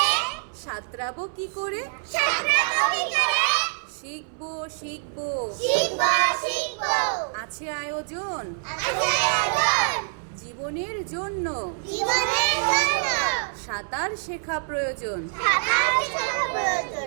সাঁতরাবো কি করে, সাঁতরাবো কি করে, শিখবো শিখবো শিখবো শিখবো আছে আয়োজন আছে আয়োজন, জীবনের জন্য জীবনের জন্য সাঁতার শেখা প্রয়োজন। সাঁতার শেখা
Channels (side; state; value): left; silent; 61 dB below the other